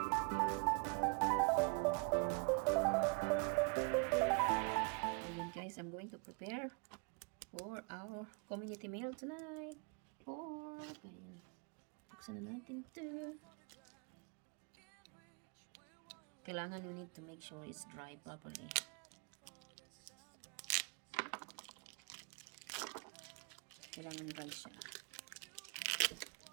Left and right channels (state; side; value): quieter; left; 34.1 dB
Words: Ayan guys, I'm going to prepare for our community meal tonight. Ayan. Buksan na natin ito. Kailangan you need to make sure it's dry properly. Kailangan dry siya.